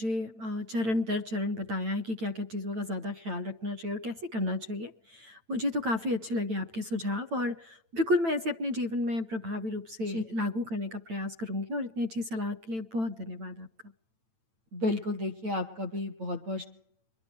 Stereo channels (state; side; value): late; left; 8.9 ms